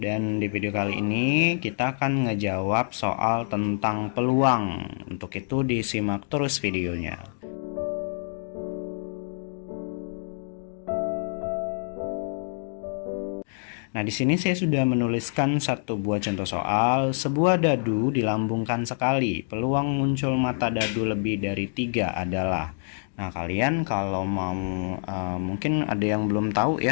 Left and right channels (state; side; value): silent; right; digital silence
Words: di video kali ini kita akan ngejawab soal tentang peluang. Untuk itu disimak terus videonya. Nah, di sini saya sudah menuliskan satu buah contoh soal. Sebuah dadu dilambungkan sekali. Peluang muncul mata dadu lebih dari 3 adalah. Nah, kalian kalau mau mungkin ada yang belum tahu